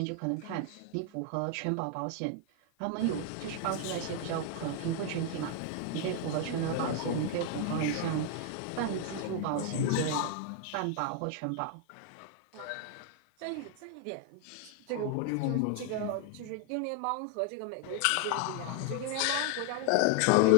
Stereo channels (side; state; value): both; different; correlation 0.00